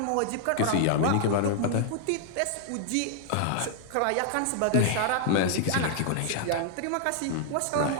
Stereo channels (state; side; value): different; both; correlation -0.01